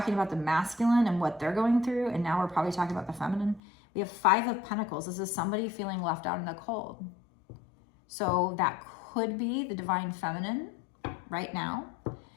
about the masculine and what they're going through, and now we're probably talking about the feminine. We have 5 of Pentacles. This is somebody feeling left out in the cold. So that could be the Divine Feminine right now.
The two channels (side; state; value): right; drops out; at 3.6 s